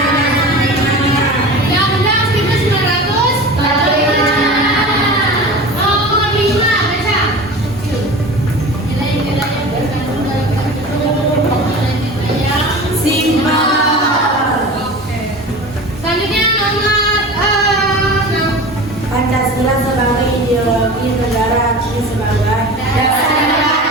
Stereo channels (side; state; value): both; normal; correlation 0.35